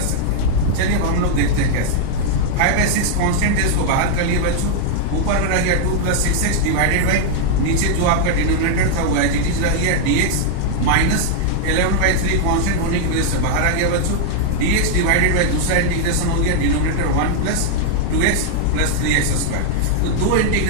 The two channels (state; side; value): different; both; correlation -0.01